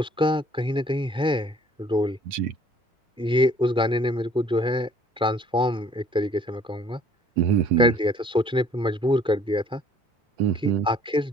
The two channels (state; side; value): normal; both; correlation 0.57